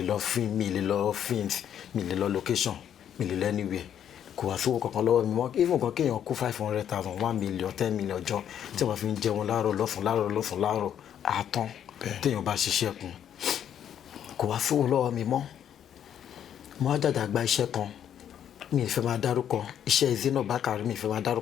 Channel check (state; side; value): quieter; right; 9.6 dB